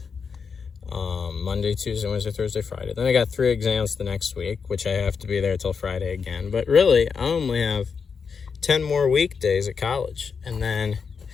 Monday, Tuesday, Wednesday, Thursday, Friday. Then I got 3 exams the next week, which I have to be there till Friday again. But really, I only have 10 more weekdays at college. And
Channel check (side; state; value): right; quieter; 5.8 dB